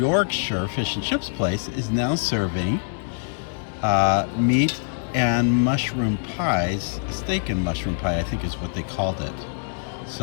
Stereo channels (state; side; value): silent; right; digital silence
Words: Fish and Chips place is now serving meat and mushroom pies. Steak and mushroom pie, I think, is what they called it.